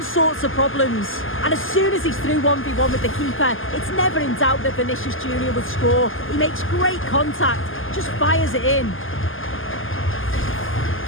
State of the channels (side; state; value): right; late; 0.59 ms